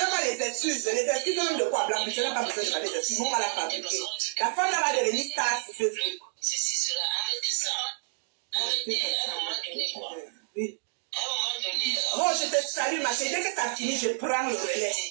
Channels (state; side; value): silent; left; 58 dB below the other